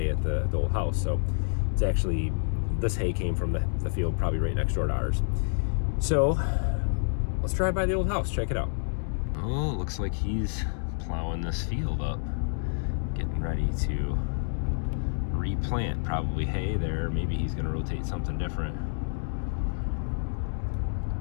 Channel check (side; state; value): right; silent; digital silence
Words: at the old house. So it's actually, this hay came from the field probably right next door to ours. So let's drive by the old house, check it out. Oh, looks like he's plowing this field up, getting ready to replant probably hay there. Maybe he's gonna rotate something different.